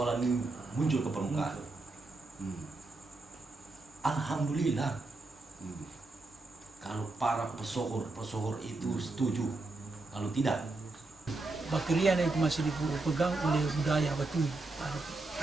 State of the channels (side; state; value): left; quieter; 3.2 dB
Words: ini muncul ke permukaan. Alhamdulillah. Kalau para pesohor itu setuju, kalau tidak, Bakrian itu masih dipegang oleh budaya Batui.